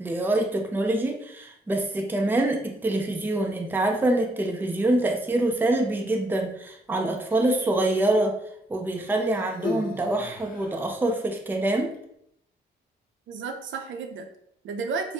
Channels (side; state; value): both; normal; correlation 0.74